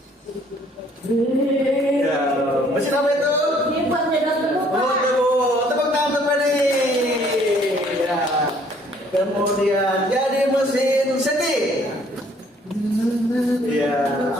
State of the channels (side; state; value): both; normal; correlation 0.61